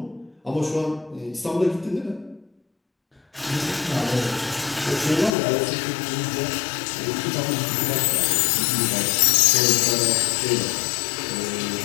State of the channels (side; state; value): right; drops out; at 5.4 s